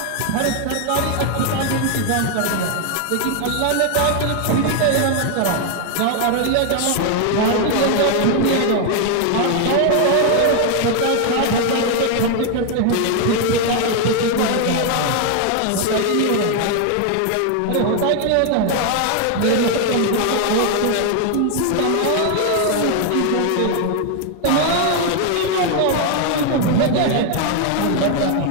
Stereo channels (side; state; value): both; different; correlation 0.01